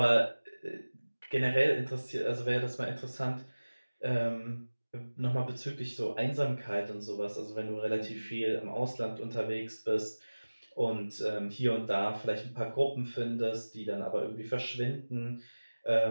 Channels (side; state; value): both; inverted; correlation -1.00